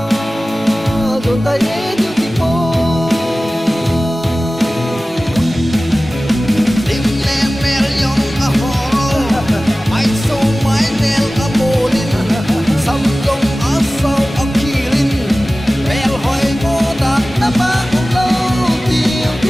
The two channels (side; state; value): both; normal; correlation 0.97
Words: rồi tay yêu thì cô tim lên mèo yong a ho ai so mai nel a bolin sam gong a sao a kilin mel hoi mo da na ma lo tiêu thì